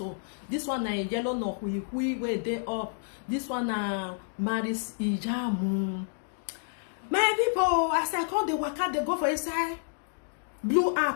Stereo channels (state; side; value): silent; right; digital silence